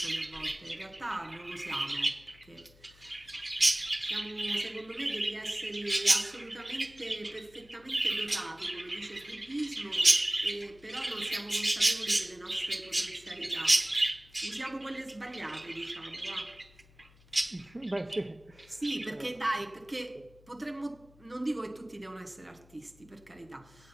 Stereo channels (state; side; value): noise; left; hum, 26 dB below the sound